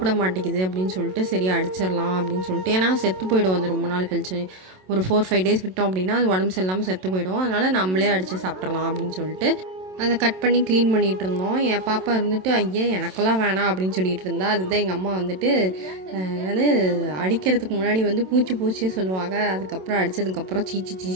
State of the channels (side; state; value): left; late; 27 ms